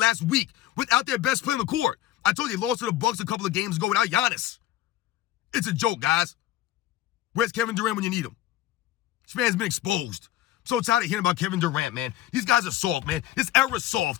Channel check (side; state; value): right; quieter; 13.9 dB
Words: week without their best player on the court. I told you they lost to the Bucks a couple of games ago without Giannis. It's a joke, guys. Where's Kevin Durant when you need him? This man's been exposed. I'm so tired of hearing about Kevin Durant, man. These guys are soft, man. This era's